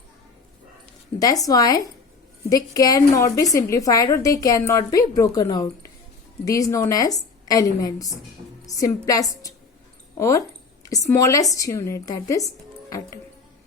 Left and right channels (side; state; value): right; quieter; 4.6 dB